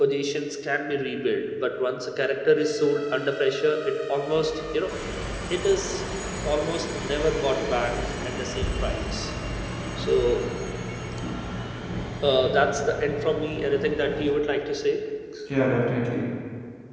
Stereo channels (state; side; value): identical; both; correlation 1.00